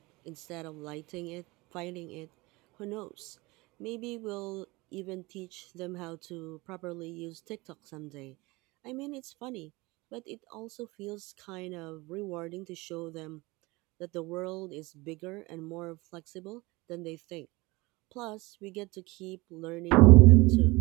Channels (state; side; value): quieter; left; 23.0 dB